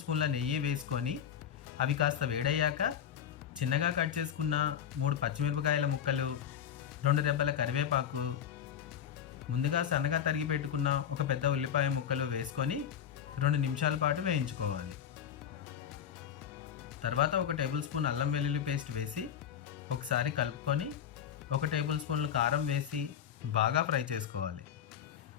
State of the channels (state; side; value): quieter; right; 9.2 dB